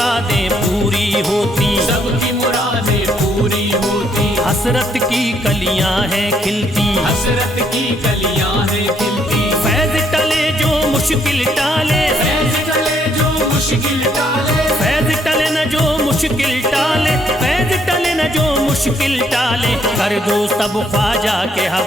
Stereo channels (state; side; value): normal; both; correlation 0.70